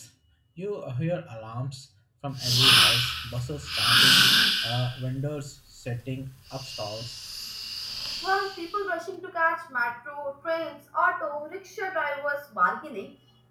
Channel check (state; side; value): identical; both; correlation 1.00